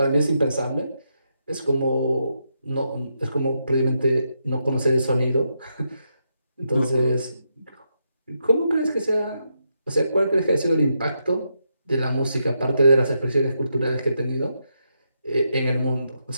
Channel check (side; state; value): both; inverted; correlation -0.82